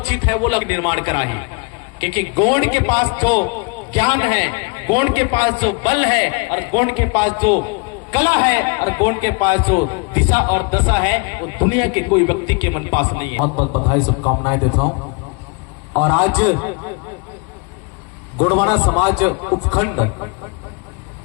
है, वो लोग निर्माण कराही। क्योंकि गोंड के पास जो ज्ञान है, गोंड के पास जो बल है, और गोंड के पास जो कला है, और गोंड के पास जो दिशा और दशा है, वो दुनिया के कोई व्यक्ति के मन पास नहीं है। बहुत बहुत बधाई, शुभकामनाएं देता हूँ। और आज गोंडवाना समाज उपखंड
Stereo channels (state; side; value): quieter; right; 32.0 dB